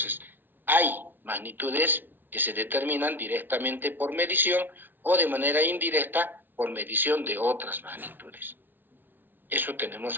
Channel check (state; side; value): late; left; 0.093 ms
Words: hay magnitudes que se determinan directamente por medición o de manera indirecta por medición de otras magnitudes. Eso tenemos